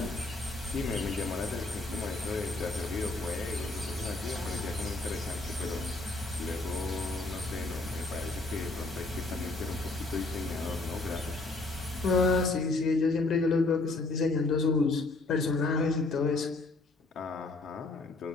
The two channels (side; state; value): right; quieter; 3.2 dB